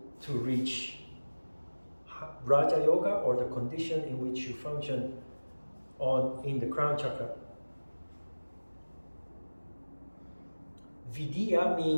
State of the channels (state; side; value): inverted; both; correlation -1.00